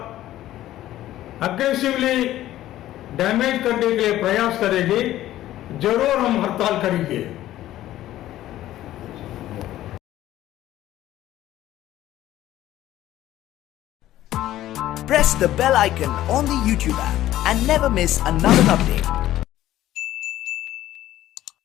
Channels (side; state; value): right; quieter; 13.9 dB